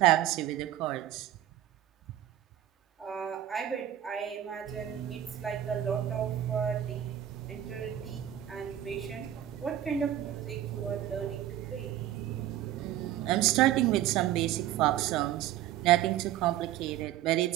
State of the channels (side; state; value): left; quieter; 12.2 dB